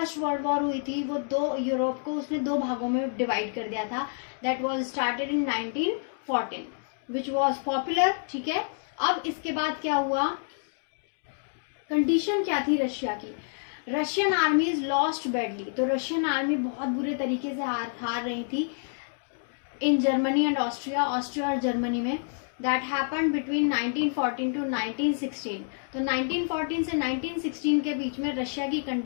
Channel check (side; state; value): right; silent; digital silence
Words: वर्ल्ड वॉर हुई थी वो यूरोप को उसने दो भागों में डिवाइड कर दिया था। That was started in 1914 which was popular. ठीक है, अब इसके बाद क्या हुआ, कंडीशन क्या थी रशिया की? Russian armies lost badly. तो रशियन आर्मी बहुत बुरे तरीके से हार रही थी इन जर्मनी एंड ऑस्ट्रिया और जर्मनी में। That happened between 1914 to 1916। तो 1914 से 1916 के बीच में रशिया की